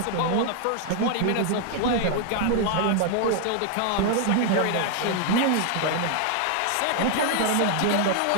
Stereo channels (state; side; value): different; both; correlation 0.00